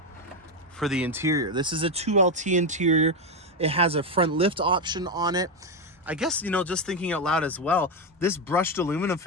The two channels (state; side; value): normal; both; correlation 0.09